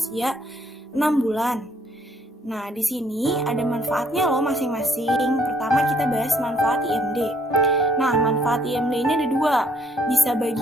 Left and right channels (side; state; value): both; normal; correlation 0.66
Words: 6 bulan. Nah, di sini ada manfaatnya loh masing-masing. Pertama kita bahas manfaat IMD. Nah, manfaat IMD ini ada 2, bisa